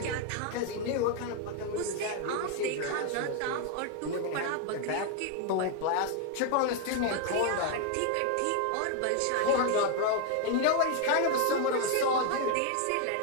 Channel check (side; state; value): both; different; correlation 0.01